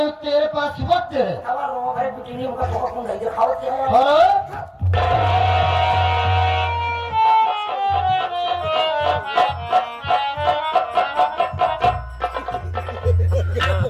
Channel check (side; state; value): both; identical; correlation 1.00